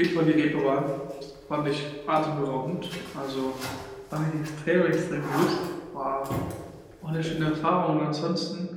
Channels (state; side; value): identical; both; correlation 1.00